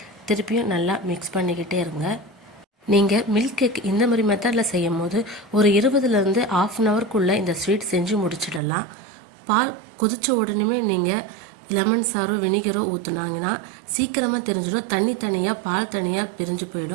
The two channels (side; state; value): left; drops out; at 8.6 s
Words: திருப்பியும் நல்லா மிக்ஸ் பண்ணிக்கிட்டே இருங்க. நீங்கள் மில்க் கேக் இந்த மாதிரி மெத்தடில் செய்யும் போது ஒரு 20லேருந்து ½ அன் ஹவருக்குள்ளே இந்த ஸ்வீட் செஞ்சு முடிச்சிடலாம். பால் கொதித்த உடனே நீங்கள் லெமன் சாரோ வினிகரோ ஊற்றுனாங்கன்னா சீக்கிரமாக தெரிஞ்சிடும். தண்ணி தனியாக பால் தனியாக பிரிஞ்சு